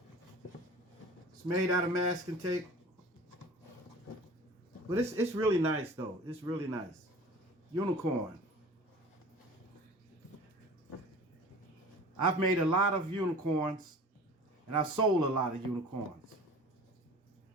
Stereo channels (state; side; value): normal; both; correlation 0.42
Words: It's made out of masking tape. But it's really nice though. It's really nice. Unicorn. I've made a lot of unicorns and I've sold a lot of unicorns.